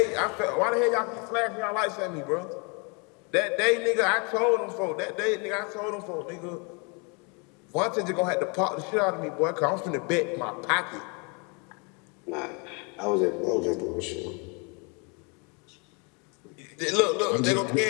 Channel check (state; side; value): quieter; right; 33.0 dB